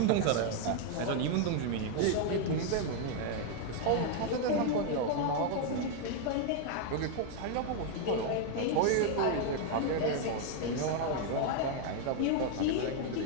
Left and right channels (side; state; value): both; different; correlation 0.00